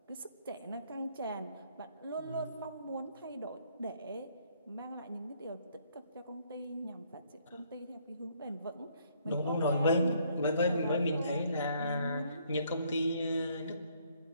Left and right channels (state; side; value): inverted; both; correlation -0.66